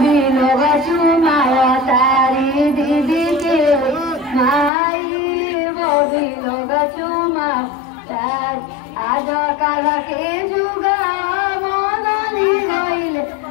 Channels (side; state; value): right; drops out; at 4.7 s